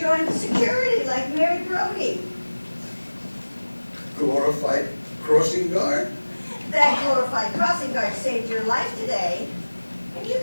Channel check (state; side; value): inverted; both; correlation -1.00